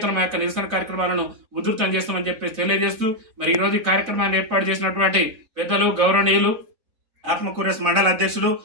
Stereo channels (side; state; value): left; late; 3.4 ms